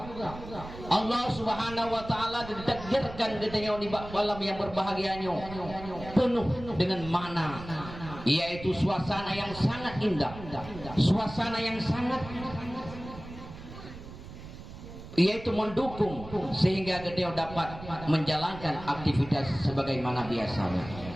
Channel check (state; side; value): noise; right; rumble, 13 dB below the sound